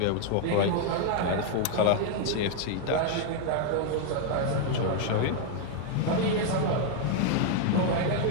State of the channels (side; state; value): both; different; correlation 0.00